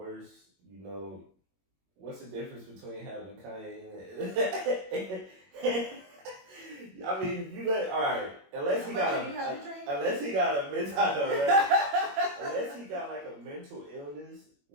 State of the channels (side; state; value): left; late; 21 ms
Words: What's the difference between having Kanye and I mean, alright. Unless he got like a mental illness